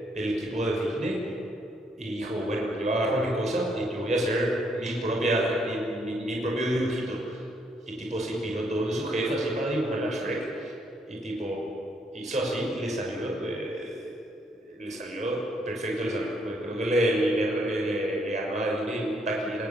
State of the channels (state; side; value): normal; both; correlation 0.71